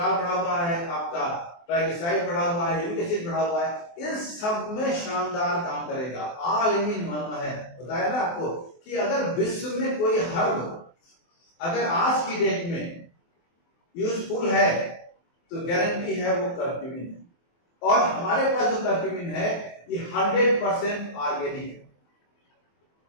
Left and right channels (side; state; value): right; late; 23 ms